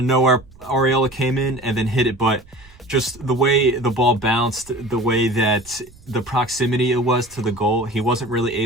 nowhere Arriola came in and then hit it. But just the way the ball bounced, the way that the proximity it was to the goal. He wasn't really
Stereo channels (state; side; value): noise; right; rumble, 25 dB below the sound